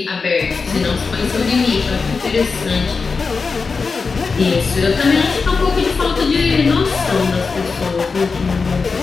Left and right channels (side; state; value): right; quieter; 4.7 dB